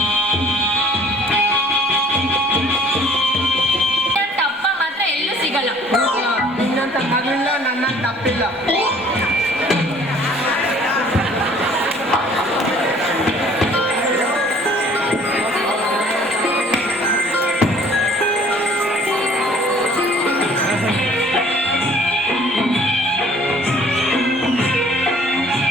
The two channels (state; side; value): normal; both; correlation 0.54